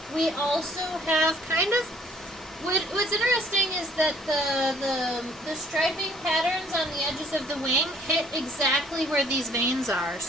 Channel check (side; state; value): both; normal; correlation 0.59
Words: we also have kind of, what's interesting is that the striping patterns on the edges of the wing hit exactly where these veins are.